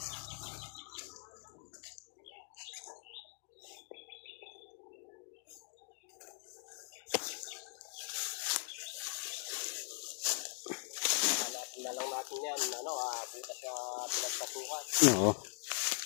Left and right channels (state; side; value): silent; right; digital silence